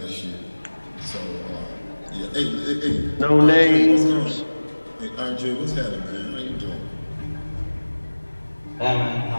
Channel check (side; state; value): both; inverted; correlation -1.00